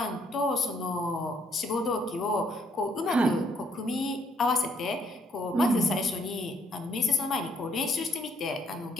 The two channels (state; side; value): normal; both; correlation 0.68